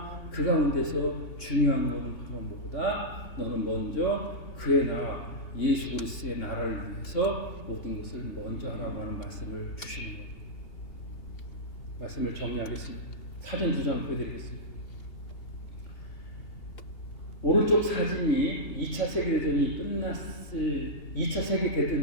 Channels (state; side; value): late; right; 2.8 ms